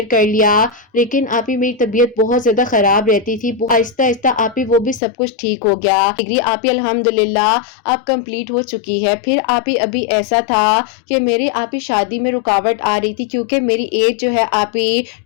کر لیا، لیکن آپ ہی میری طبیعت بہت زیادہ خراب رہتی تھی۔ آہستہ آہستہ آپ ہی وہ بھی سب کچھ ٹھیک ہو گیا۔ ڈگری آپ ہی الحمدللہ اب کمپلیٹ ہو چکی ہے۔ پھر آپ ہی ابھی ایسا تھا کہ میری آپ ہی شادی میں رکاوٹ آ رہی تھی، کیونکہ میری ایج جو ہے آپ ہی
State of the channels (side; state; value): right; drops out; at 5.0 s